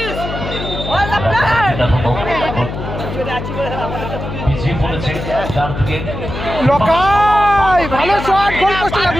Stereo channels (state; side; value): noise; left; hum, 7 dB below the sound